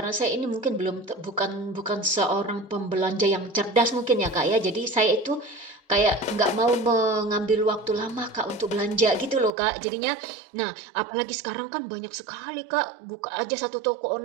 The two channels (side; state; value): left; drops out; at 9.5 s